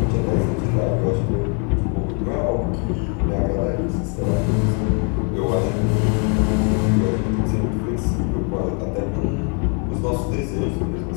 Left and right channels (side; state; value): right; quieter; 37.8 dB